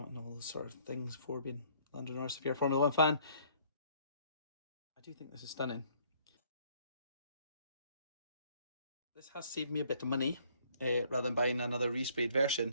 all those sort of things, 4 being Lando Norris if you're a Formula 1 fan. I do think this is stunning. This has saved me a bit of money rather than buying another resprayed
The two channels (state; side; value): inverted; both; correlation -0.62